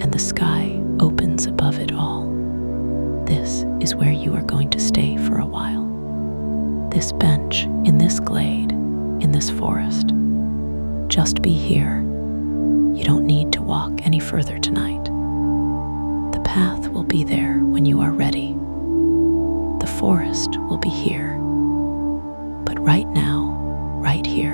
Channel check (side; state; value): both; inverted; correlation -1.00